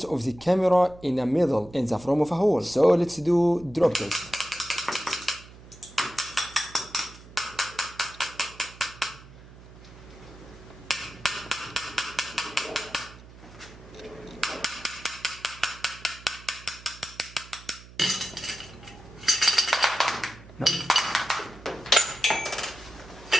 of the camera in the middle in the form of a hole. So let's do drop test. No.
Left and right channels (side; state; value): right; noise; hum, 19 dB below the sound